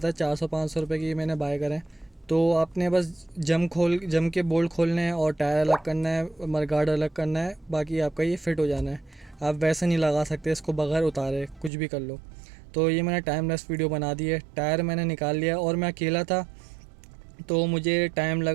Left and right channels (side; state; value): left; drops out; at 11.7 s